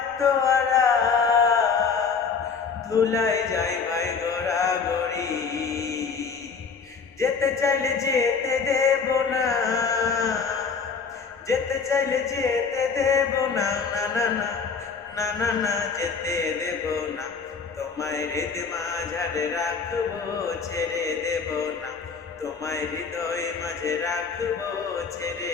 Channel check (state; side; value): quieter; right; 5.5 dB